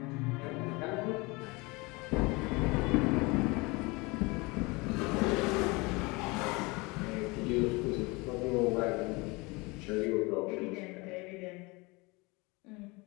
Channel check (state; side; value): quieter; right; 25.6 dB